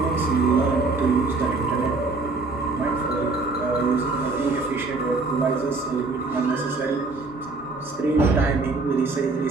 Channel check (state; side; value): quieter; left; 3.6 dB